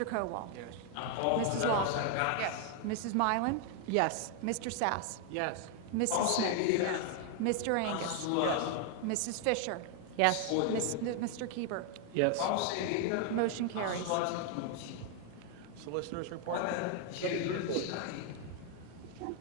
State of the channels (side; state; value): both; different; correlation 0.01